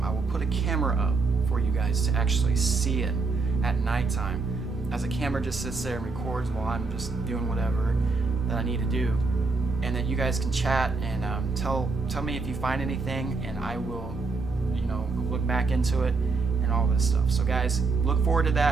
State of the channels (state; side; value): quieter; left; 4.0 dB